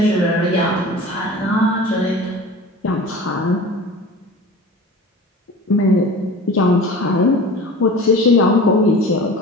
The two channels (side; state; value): both; normal; correlation 0.38